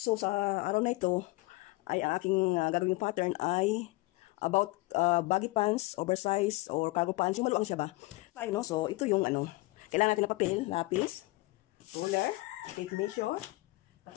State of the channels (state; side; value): quieter; right; 22.1 dB